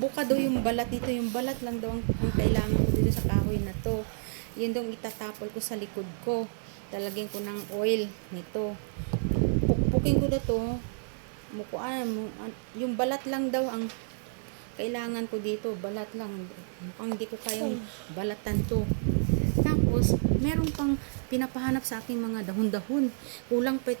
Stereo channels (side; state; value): left; silent; digital silence